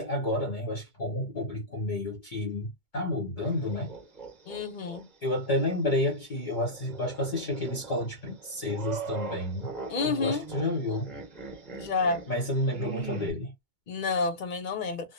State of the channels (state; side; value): late; right; 2.2 ms